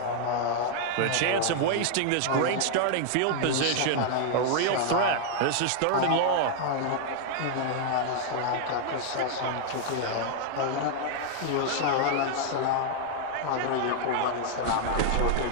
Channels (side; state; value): both; different; correlation 0.00